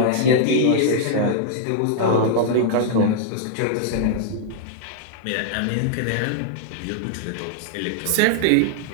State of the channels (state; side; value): different; both; correlation -0.01